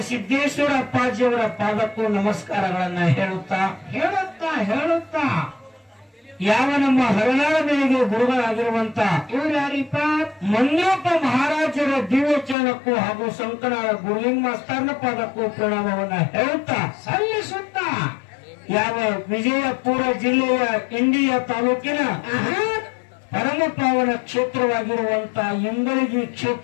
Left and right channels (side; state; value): right; drops out; at 12.6 s